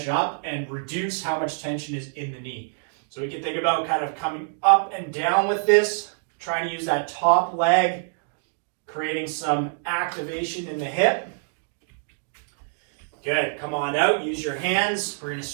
up and reduce how much tension is in the knee. So we can think about kind of coming up and down with this, trying to use that top leg, creating some activation in the hip. Good, come on out, use your hands. We're going to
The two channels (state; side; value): silent; left; digital silence